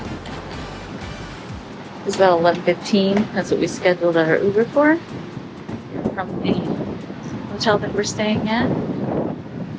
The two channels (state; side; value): identical; both; correlation 1.00